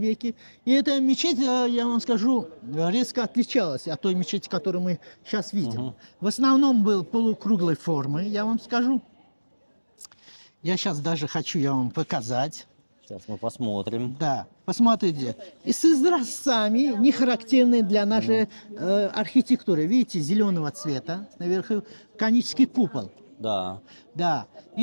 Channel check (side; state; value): both; inverted; correlation -1.00